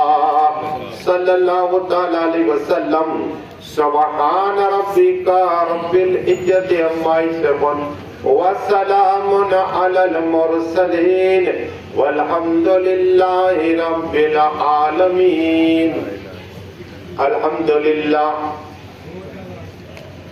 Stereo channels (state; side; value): identical; both; correlation 1.00